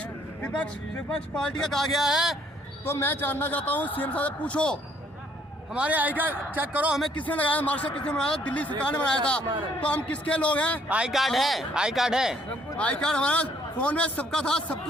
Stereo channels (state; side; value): normal; both; correlation 0.64